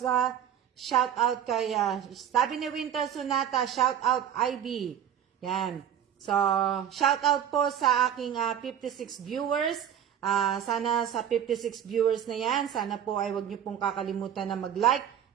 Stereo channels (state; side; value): quieter; left; 9.6 dB